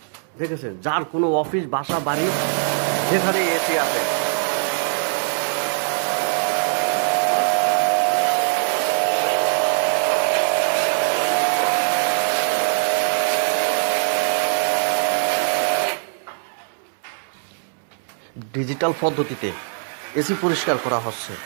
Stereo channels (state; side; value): silent; left; digital silence